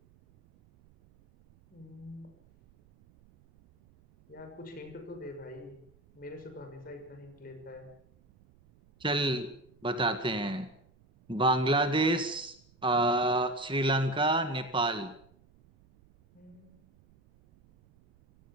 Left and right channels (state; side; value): noise; right; rumble, 29 dB below the sound